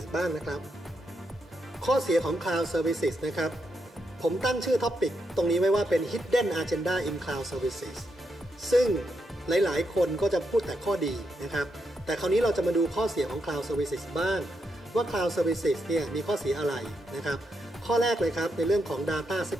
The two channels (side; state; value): both; normal; correlation 0.82